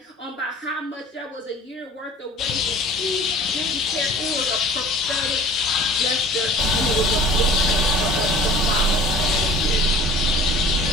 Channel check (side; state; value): both; normal; correlation 0.45